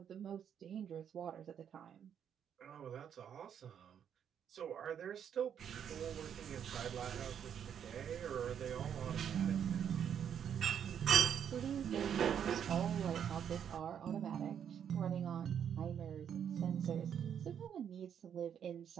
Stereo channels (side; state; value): left; quieter; 8.6 dB